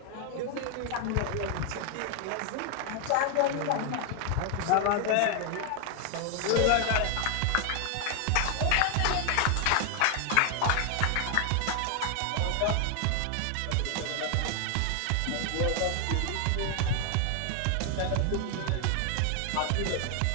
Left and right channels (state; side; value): different; both; correlation 0.00